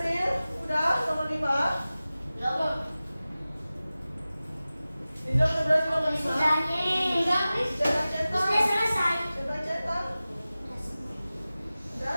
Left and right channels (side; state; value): both; inverted; correlation -0.96